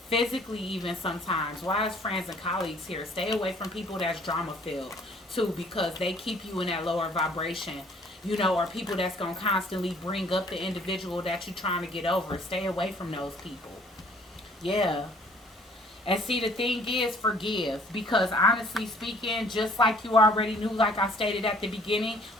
physically, even sometimes. Why is friends and colleagues here? Stay away from people that's drama filled too, because they keep you in that lower vibration, you know, or people that's going to constantly bring up the individual that you're trying to get over. Stay away from those people. Yeah. And see, the thing is, forgive. Because honestly speaking, just like you already knew, like I stated at the beginning,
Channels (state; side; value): normal; both; correlation 0.57